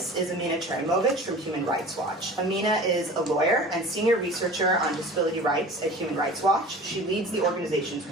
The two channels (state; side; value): normal; both; correlation 0.40